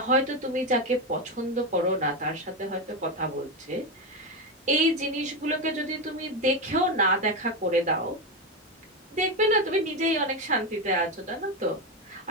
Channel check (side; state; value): both; normal; correlation 0.12